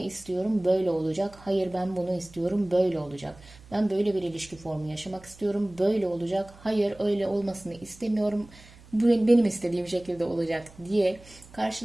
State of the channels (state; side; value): noise; right; hum, 23 dB below the sound